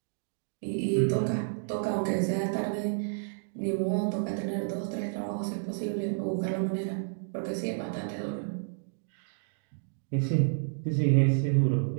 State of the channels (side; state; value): left; silent; digital silence